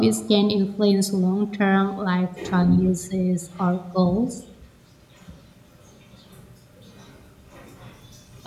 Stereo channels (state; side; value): identical; both; correlation 1.00